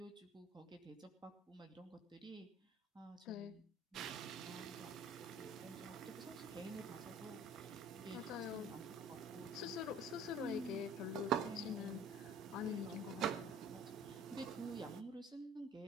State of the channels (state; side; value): normal; both; correlation 0.49